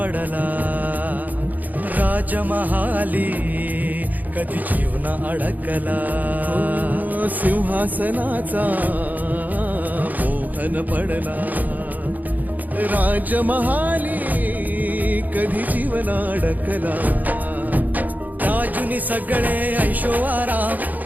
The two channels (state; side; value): late; left; 0.082 ms